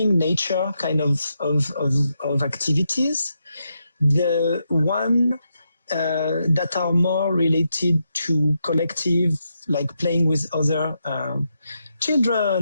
nature kind of activities. The one that are more related to collective, like playing with other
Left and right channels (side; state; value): both; inverted; correlation -0.83